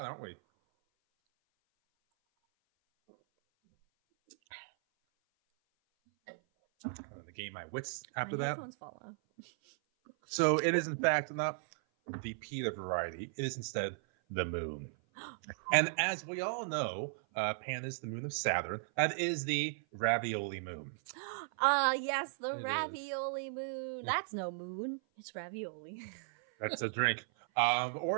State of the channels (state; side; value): silent; left; 54 dB below the other